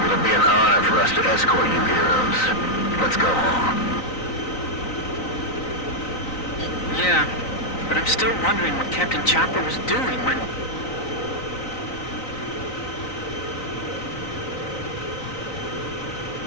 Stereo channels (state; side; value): late; right; 3.9 ms